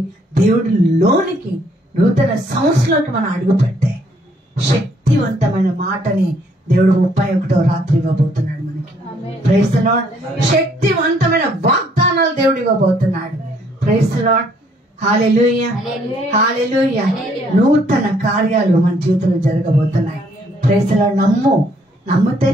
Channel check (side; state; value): both; normal; correlation 0.66